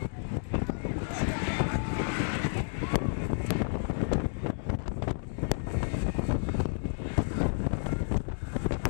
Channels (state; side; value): silent; right; digital silence